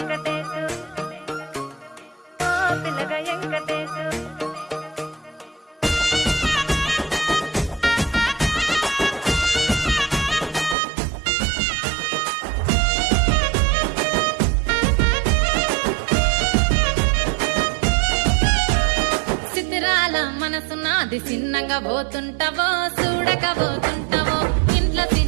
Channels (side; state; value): left; drops out; at 10.8 s